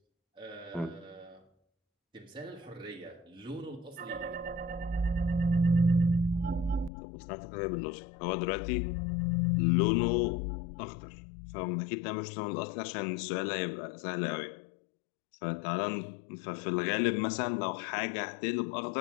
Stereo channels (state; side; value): drops out; right; at 6.9 s